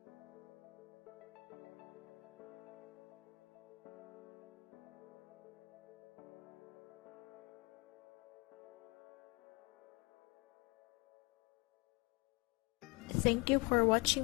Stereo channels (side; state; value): right; quieter; 27.2 dB